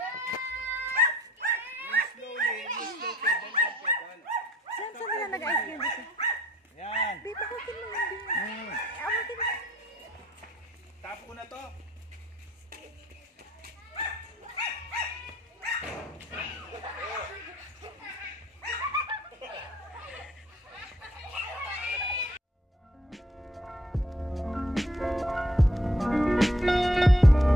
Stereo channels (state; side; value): normal; both; correlation 0.63